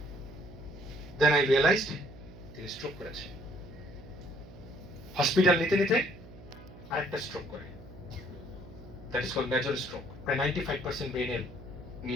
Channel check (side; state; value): right; noise; hum, 18 dB below the sound